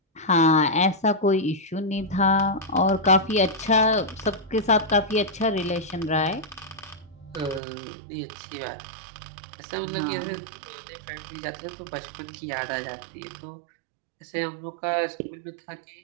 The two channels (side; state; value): left; drops out; at 7.6 s